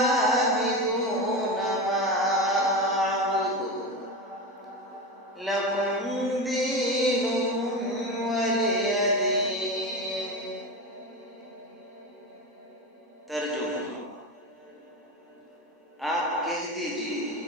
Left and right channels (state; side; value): normal; both; correlation 0.21